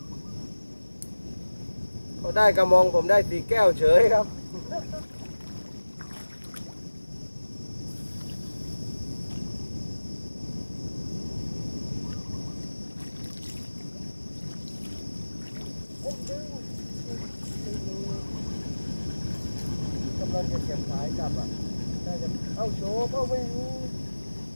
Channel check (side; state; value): both; inverted; correlation -1.00